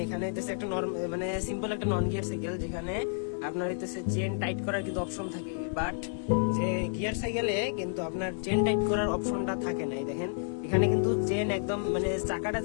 এখানে হইতেছে একটা মানে সিম্পল একটা নন গিয়ার সাইকেল, যেখানে আপনার হইতেছে চেন টাইট করার কিন্তু অপশন থাকে, বাট যে গিয়ার সাইকেলে কিন্তু আপনার চেন টাইট করার অপশনটা থাকে না। এই দেখেন, এখানে কিন্তু চেন একদম মানে চাকাটা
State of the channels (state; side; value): silent; right; digital silence